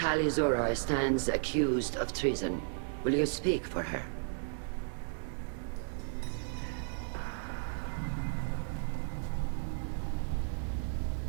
Zora stands accused of treason. Will you speak for her?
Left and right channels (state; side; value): silent; left; digital silence